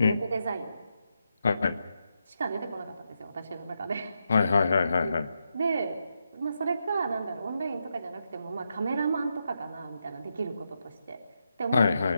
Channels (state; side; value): inverted; both; correlation -0.84